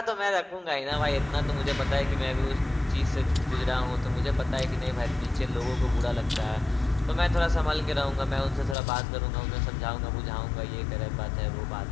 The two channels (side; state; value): right; drops out; at 8.8 s